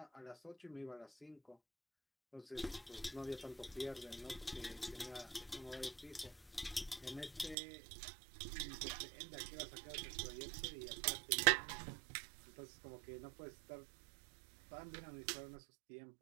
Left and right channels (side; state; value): left; drops out; at 7.6 s